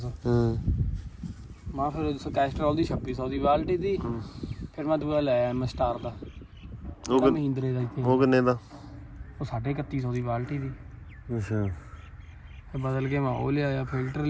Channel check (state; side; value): identical; both; correlation 1.00